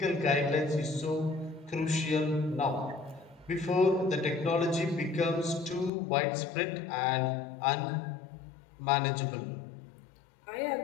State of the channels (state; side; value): drops out; right; at 5.9 s